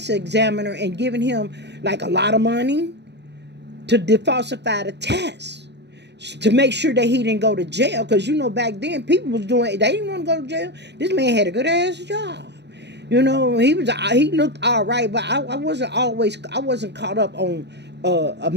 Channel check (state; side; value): late; left; 0.50 ms